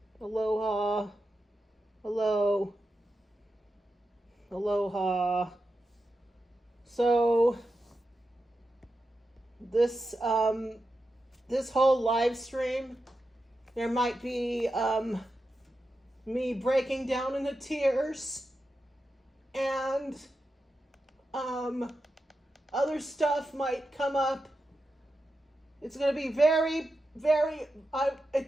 aloha, hello, aloha. So this whole live stream, there might be me breaking down into tears and other stuff might come up. It's going to be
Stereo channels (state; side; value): normal; both; correlation 0.89